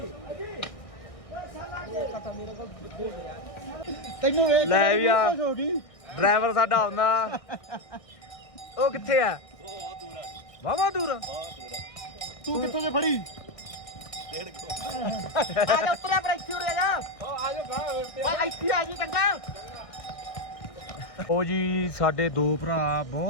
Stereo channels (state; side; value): late; right; 1.7 ms